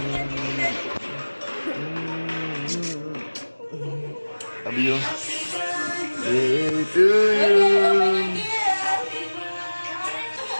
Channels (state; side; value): inverted; both; correlation -1.00